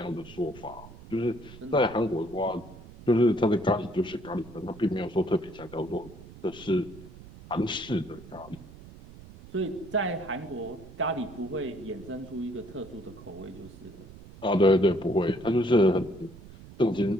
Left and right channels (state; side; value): noise; right; rumble, 18 dB below the sound